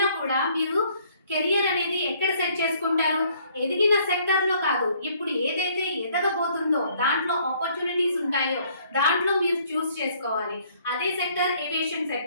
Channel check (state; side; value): inverted; both; correlation -0.62